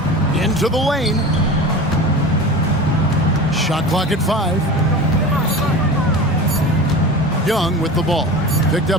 Into the lane. Shot clock at 5. Young with the ball. Picked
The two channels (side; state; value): both; normal; correlation 0.33